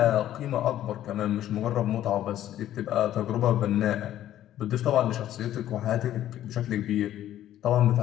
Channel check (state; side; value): quieter; right; 12.4 dB